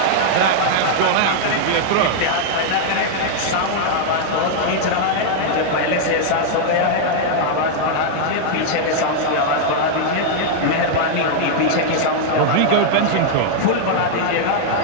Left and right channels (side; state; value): both; different; correlation -0.01